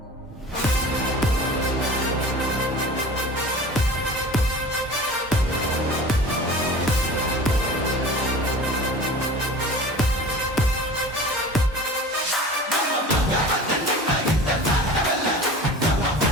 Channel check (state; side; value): normal; both; correlation 0.39